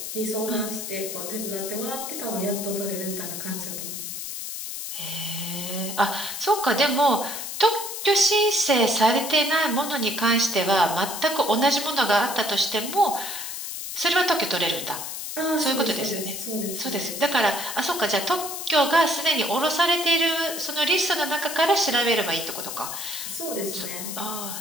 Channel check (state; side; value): noise; left; hiss, 6 dB below the sound